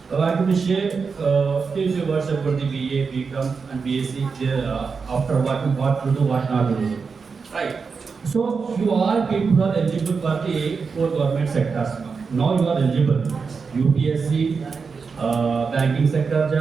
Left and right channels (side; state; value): left; quieter; 5.2 dB